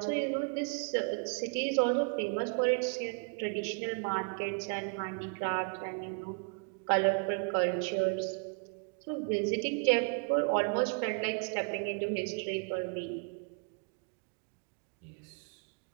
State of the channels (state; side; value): quieter; left; 35.8 dB